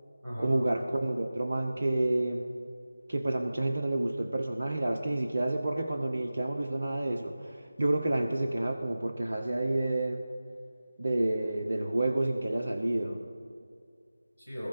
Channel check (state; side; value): inverted; both; correlation -0.96